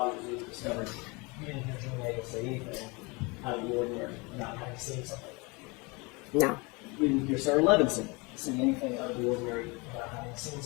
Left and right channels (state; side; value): quieter; right; 27.6 dB